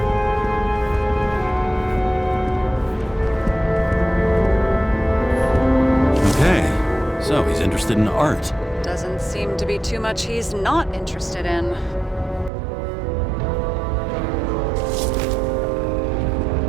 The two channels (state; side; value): drops out; left; at 12.5 s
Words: Okay, so he's interested in art. Doesn't seem to be too much he's not interested in.